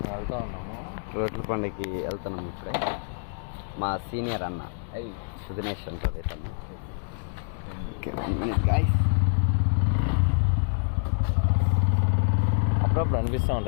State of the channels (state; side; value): silent; right; digital silence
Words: వెళ్తా ఉన్నాము. రొట్టెల పండుగకి వెళ్తున్నాము. ఇప్పుడే మా సీనియర్ అన్న సుదినేష్ అంటారు ఇతను. గాయస్ అప్పుడప్పుడు అనిపిస్తూ